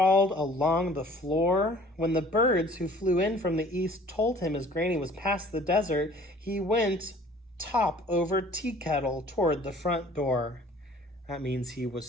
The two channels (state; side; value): normal; both; correlation 0.51